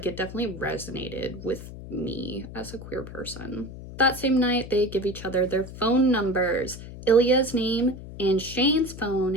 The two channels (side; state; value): left; noise; hum, 13 dB below the sound